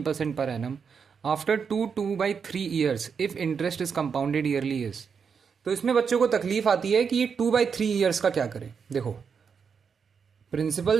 per annum after 2/3 years if interest is compounded yearly is. तो इसमें बच्चों को तकलीफ आती है कि ये 2/3 ईयर्स का क्या करें। देखो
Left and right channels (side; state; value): left; quieter; 6.3 dB